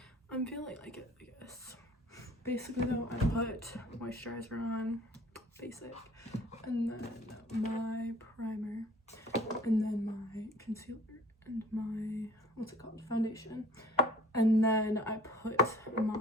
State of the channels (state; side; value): normal; both; correlation 0.51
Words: I'm feeling like it, I guess. Basically though, I put moisturizer on, basic, and then my primer, and then my concealer, and my, what's it called, foundation. And then I put